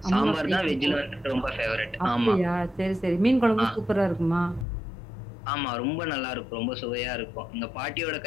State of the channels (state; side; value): drops out; right; at 4.7 s